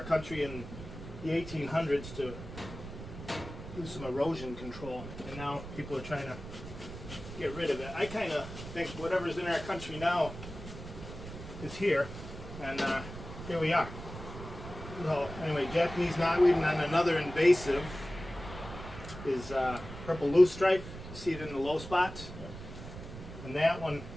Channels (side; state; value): right; noise; rumble, 12 dB below the sound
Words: country in the 1800s to do some erosion control, and now people are trying to get rid of it. I kind of think whatever's in our country now is here, and here we are. So anyway, Japanese knotweed, and then another invasive is purple loosestrife. You see it in the low spots, and that one